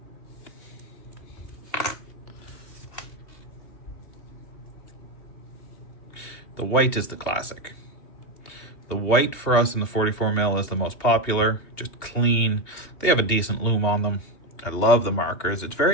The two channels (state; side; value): late; right; 2.8 ms